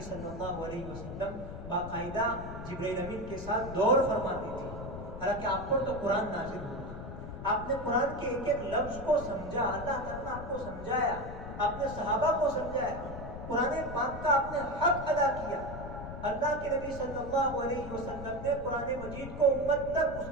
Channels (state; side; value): noise; left; rumble, 9 dB below the sound